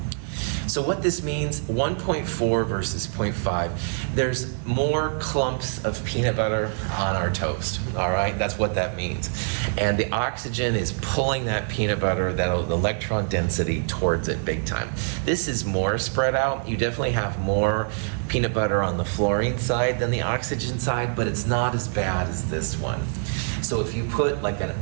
So what this means, 1.4 versus 0.5, there's more clumps of peanut butter on our toast, all right? That's what that means. And the oxygen is pulling that peanut butter, that electron density, towards it big time. This is more spread out. You definitely have more peanut butter on the fluorine side than the oxygen side, but it's not as bad as this one. So if you put like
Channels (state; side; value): silent; left; 62 dB below the other